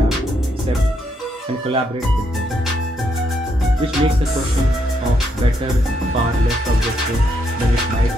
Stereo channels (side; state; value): both; normal; correlation 0.76